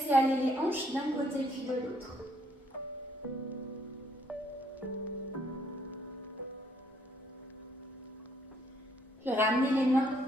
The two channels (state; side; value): normal; both; correlation 0.68